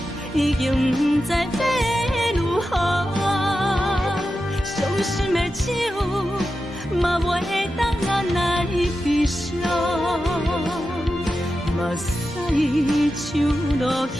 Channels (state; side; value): normal; both; correlation 0.91